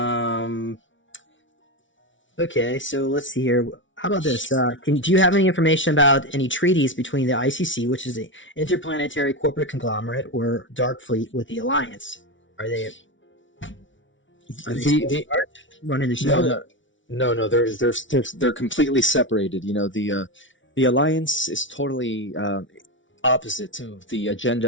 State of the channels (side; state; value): right; late; 0.56 ms